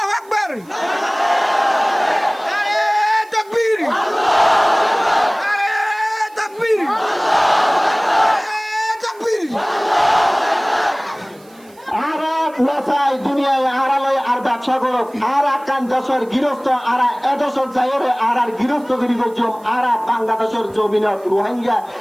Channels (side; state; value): right; noise; hiss, 28 dB below the sound